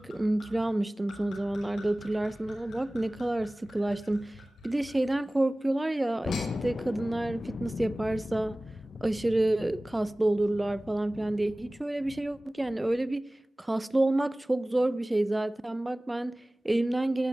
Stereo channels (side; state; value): both; normal; correlation 0.98